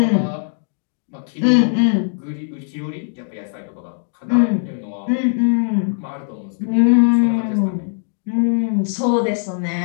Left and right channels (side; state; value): right; silent; digital silence